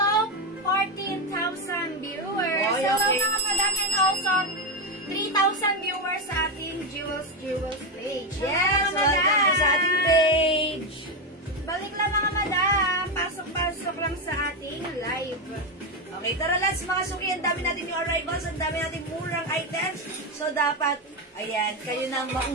14,000 viewers. Oy, Hello okay. mga madam and also 3,000 viewers sa ating Jewels page. Yes, Hello, mga welcome madam. po sa ating page. Balik lang mga madam. Pasok lang sa ating live. Okay, tara, let's mga suki. Ang dami natin yung arrivals, ang dami natin murang items. So, dapat, ayan, kayo nang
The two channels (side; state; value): both; normal; correlation 0.10